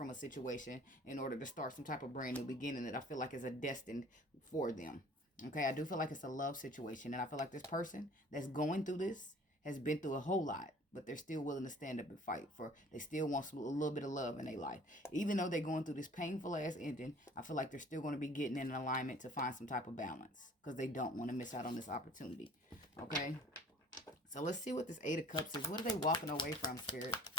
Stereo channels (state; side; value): normal; both; correlation 0.50